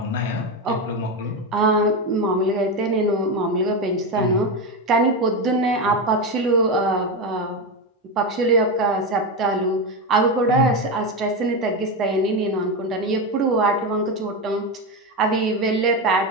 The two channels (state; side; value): normal; both; correlation 0.14